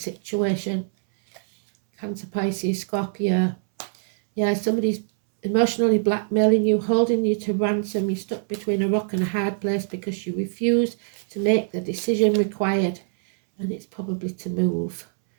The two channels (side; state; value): left; silent; 63 dB below the other